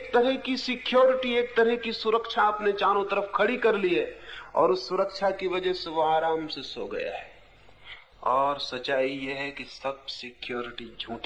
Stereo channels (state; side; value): identical; both; correlation 1.00